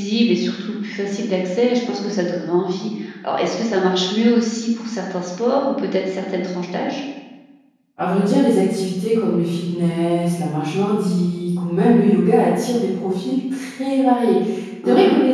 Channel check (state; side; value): identical; both; correlation 1.00